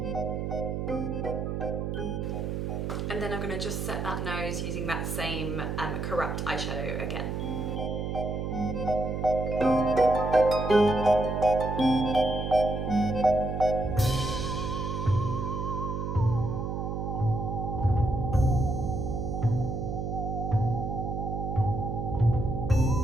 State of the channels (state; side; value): noise; right; hum, 3 dB below the sound